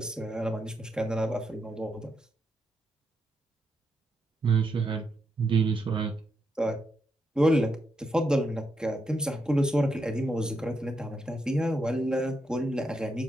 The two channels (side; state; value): both; normal; correlation 0.82